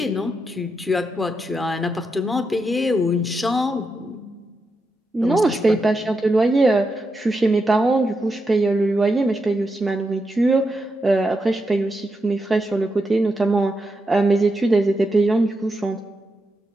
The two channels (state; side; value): normal; both; correlation 0.85